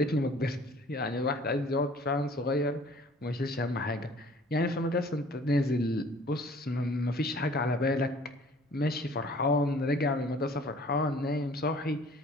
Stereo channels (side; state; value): both; normal; correlation 0.52